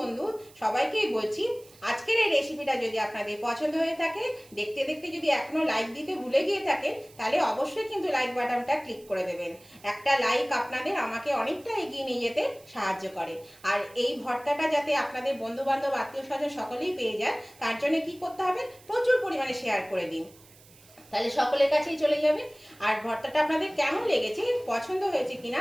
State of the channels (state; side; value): noise; right; hiss, 25 dB below the sound